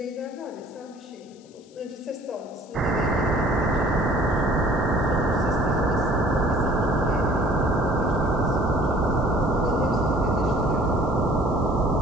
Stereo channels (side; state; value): left; noise; hiss, 29 dB below the sound